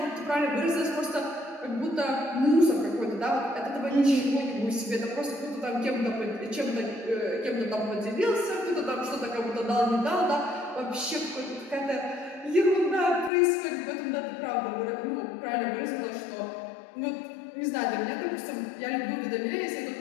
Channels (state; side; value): drops out; right; at 13.3 s